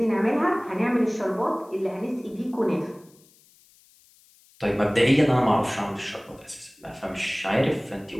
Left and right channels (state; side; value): noise; left; hiss, 29 dB below the sound